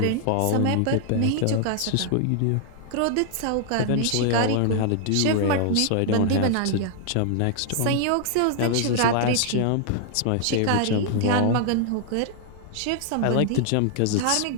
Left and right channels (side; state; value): both; different; correlation 0.00